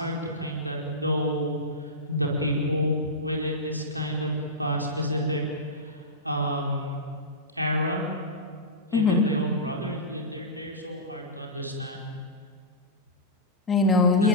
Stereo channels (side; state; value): both; normal; correlation -0.13